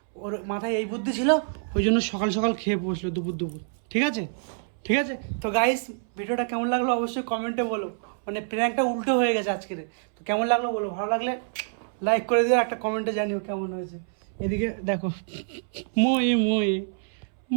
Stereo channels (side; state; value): left; silent; 61 dB below the other